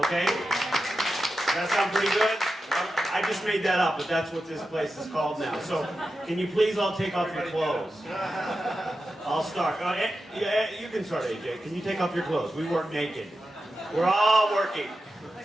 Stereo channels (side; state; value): both; normal; correlation 0.91